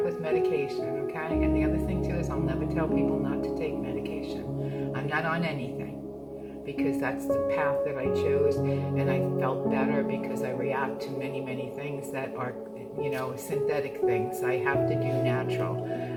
with medication, okay? And the other thing too is I'll never tell people not to take medication. I'm not on anything, because that's the path that I chose, and I felt better because I react to many, many things that are, synthetic things. I have to do natural.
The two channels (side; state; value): both; identical; correlation 1.00